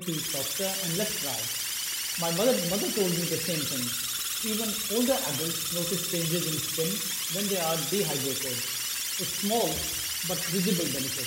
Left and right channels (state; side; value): identical; both; correlation 1.00